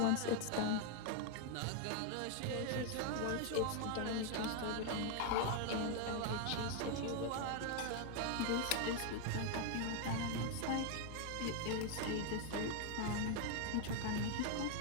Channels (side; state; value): both; different; correlation 0.01